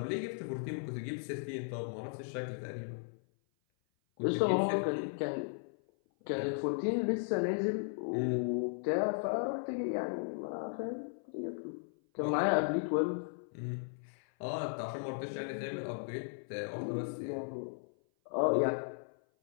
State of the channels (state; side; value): silent; right; 54 dB below the other